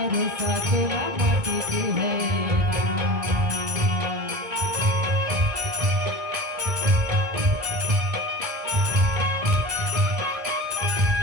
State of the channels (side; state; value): left; late; 1.9 ms